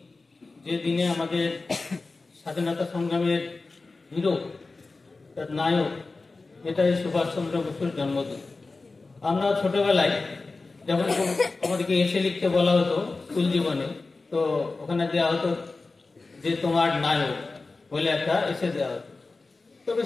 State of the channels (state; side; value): quieter; right; 3.7 dB